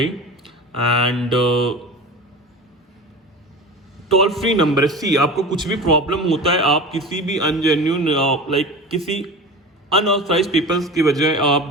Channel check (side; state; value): both; normal; correlation 0.32